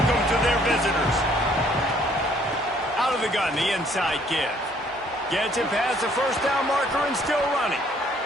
to their visitors. Out of the gun, the inside give. Gets it past the first down marker and still running.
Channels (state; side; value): normal; both; correlation 0.62